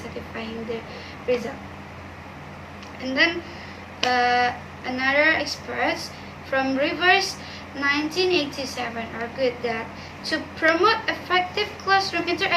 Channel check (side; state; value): both; identical; correlation 1.00